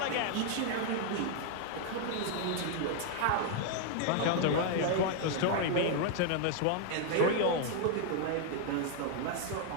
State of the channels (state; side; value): different; both; correlation 0.00